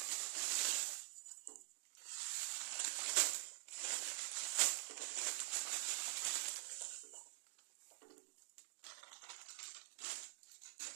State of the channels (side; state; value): left; silent; digital silence